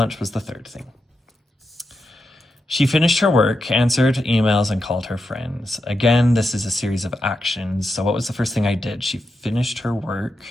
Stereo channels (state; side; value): normal; both; correlation 0.86